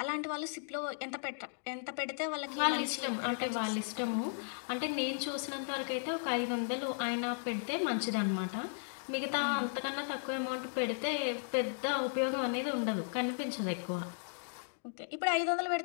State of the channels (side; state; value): right; silent; digital silence